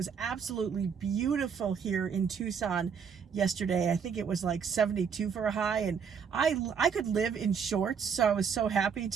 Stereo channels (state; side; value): quieter; left; 6.7 dB